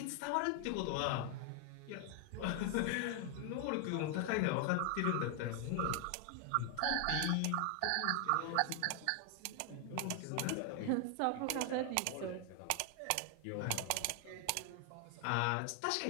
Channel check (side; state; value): both; different; correlation 0.00